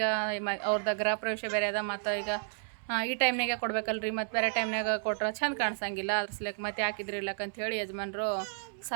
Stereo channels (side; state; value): left; silent; 57 dB below the other